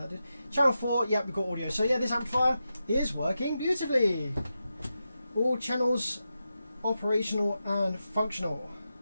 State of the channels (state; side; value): inverted; both; correlation -0.89